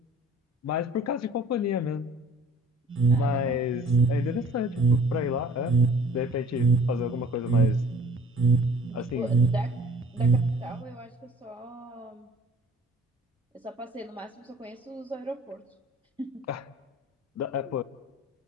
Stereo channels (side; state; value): both; normal; correlation 0.51